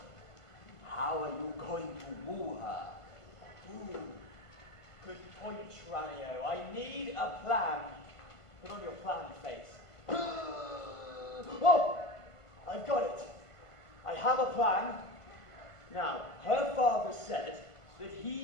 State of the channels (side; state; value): right; late; 1.5 ms